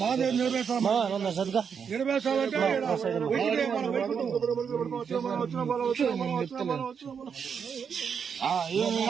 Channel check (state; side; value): quieter; left; 6.8 dB